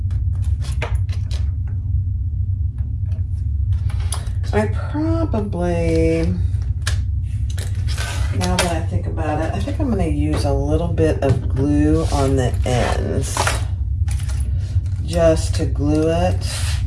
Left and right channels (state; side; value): identical; both; correlation 1.00